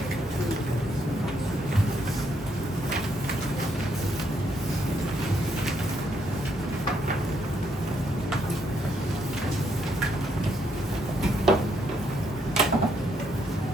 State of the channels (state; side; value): normal; both; correlation 0.74